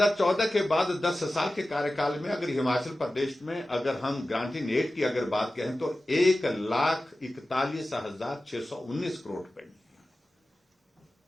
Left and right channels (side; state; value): both; normal; correlation 0.95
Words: के बाद 10 साल के कार्यकाल में अगर हिमाचल प्रदेश में अगर हम ग्रांटिंग एड की अगर बात करें तो 1,41,619 करोड़ रुपए,